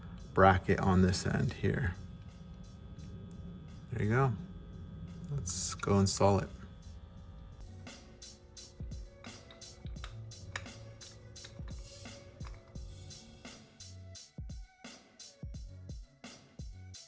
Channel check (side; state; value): both; identical; correlation 1.00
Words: bracket on this end here. There you go. Let's go install it.